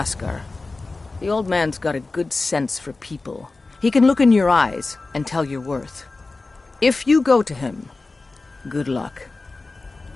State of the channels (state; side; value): quieter; right; 3.5 dB